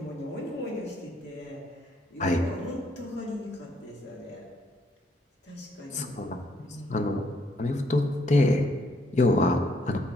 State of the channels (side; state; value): both; normal; correlation 0.70